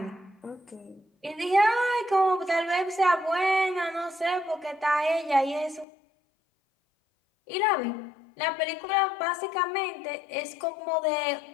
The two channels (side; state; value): right; drops out; at 5.9 s